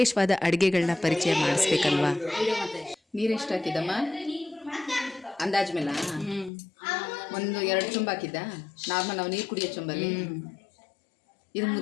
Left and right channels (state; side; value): drops out; right; at 6.5 s